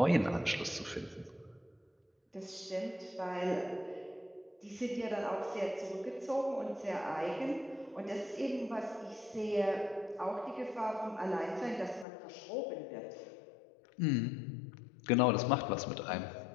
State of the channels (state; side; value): drops out; right; at 12.1 s